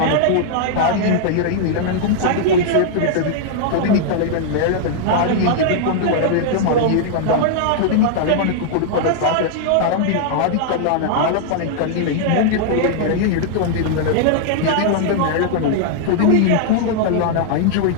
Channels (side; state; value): both; different; correlation -0.01